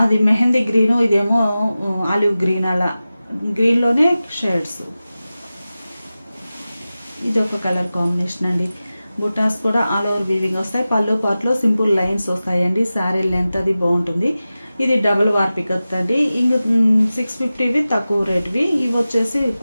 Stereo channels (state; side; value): inverted; both; correlation -0.95